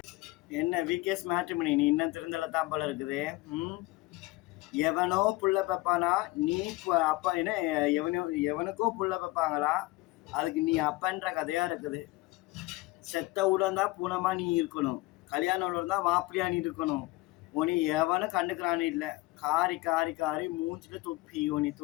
என்ன விகேஸ் மேட்ரிமோனி, நீ இன்னும் திருந்தல தான் போல இருக்குது. எவனோ புள்ள பப்பானா நீ அப்பா என்ன எவனுக்கோ புள்ள பப்பாங்களா, அதுக்கு நீ அப்பன்ற கதையா இருக்குது. செத்த உடன் தான் பூனமா நீ இருக்கணும், கல்யாணம் உடன் தான் மாப்பிள்ளையா நீ இருக்கணும். உனி எவனும் கண்டுக்கிறான்னு இல்லை, காரி காரி காரி மூஞ்சில துப்பி உனி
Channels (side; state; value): right; quieter; 20.4 dB